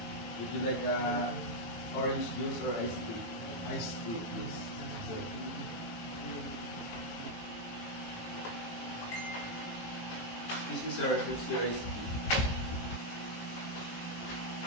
Would you like orange juice or iced tea? Iced tea, please. Sir. Excuse me, sir, here's your iced tea.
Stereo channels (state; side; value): late; right; 18 ms